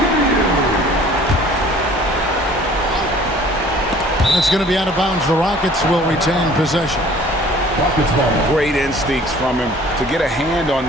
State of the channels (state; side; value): normal; both; correlation 0.51